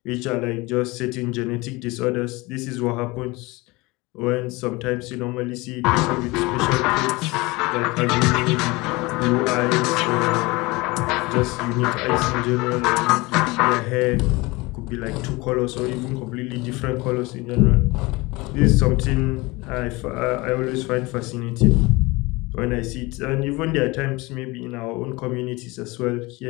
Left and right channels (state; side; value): quieter; right; 23.2 dB